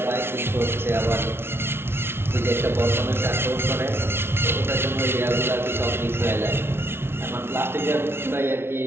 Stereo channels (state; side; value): late; left; 0.12 ms